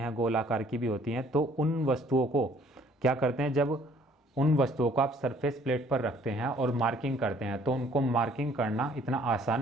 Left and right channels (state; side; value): normal; both; correlation 0.59